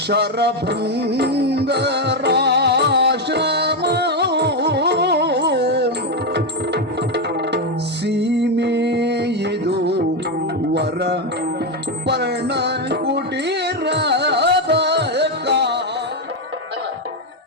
ಸೀಮೆಯಿದು ವರ ಪರ್ಣ ಕುಟೀರದ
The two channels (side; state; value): both; normal; correlation 0.07